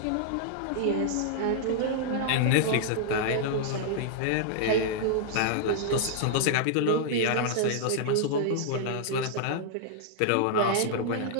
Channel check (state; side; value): different; both; correlation -0.01